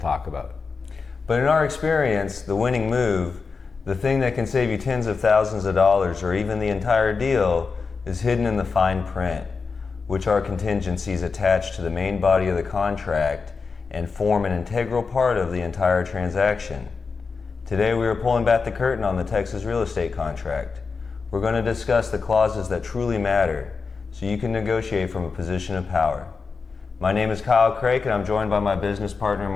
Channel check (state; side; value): quieter; right; 4.8 dB